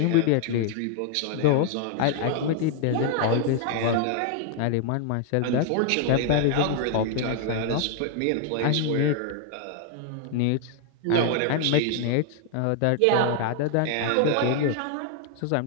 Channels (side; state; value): both; different; correlation 0.00